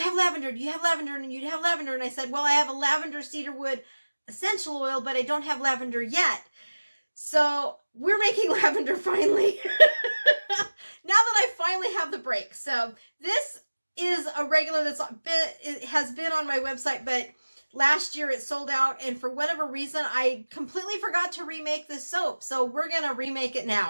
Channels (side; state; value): both; inverted; correlation -1.00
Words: have lavender? Do you have lavender? And you have lavender? And I said, well, I have a lavender cedarwood essential oil, but I don't have lavender yet. So we're making lavender finally. Now that I finally have the break. So this is a regular it has been on my website, but last year it sold out, and for whatever reason, I completely forgot to remake this soap. So we're going to remake it